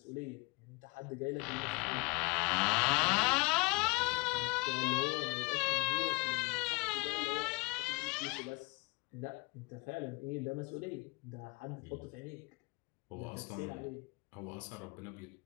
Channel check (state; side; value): quieter; right; 27.6 dB